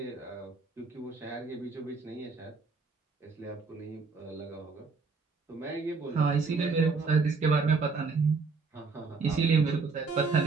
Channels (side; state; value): left; quieter; 4.6 dB